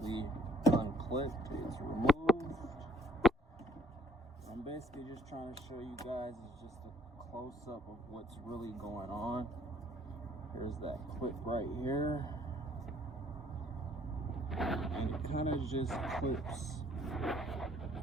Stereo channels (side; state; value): both; normal; correlation 0.59